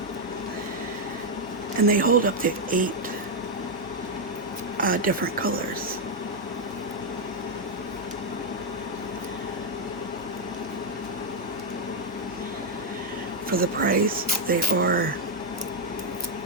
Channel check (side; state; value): both; normal; correlation 0.01